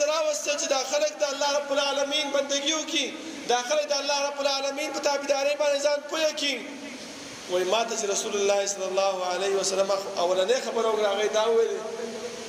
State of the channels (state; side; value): identical; both; correlation 1.00